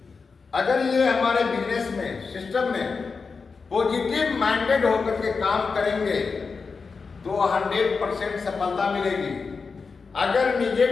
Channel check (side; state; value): right; quieter; 4.8 dB